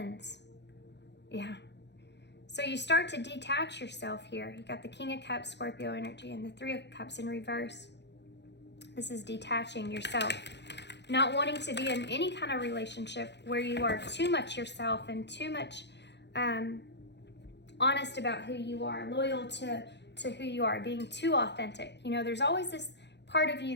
Yeah. So you start to detach yourself here. You got the King of Cups, Scorpio energy, and the Three of Cups in reverse. This is detaching yourself. Not wanting to be in any kind of relationship where you are too much yourself and too much honest about who you are, loyal to who you are, being too authentic. You know, there's always this part of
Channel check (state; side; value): late; right; 0.50 ms